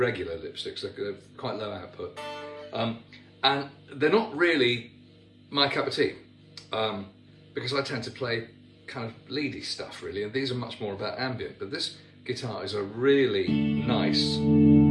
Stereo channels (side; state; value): both; identical; correlation 1.00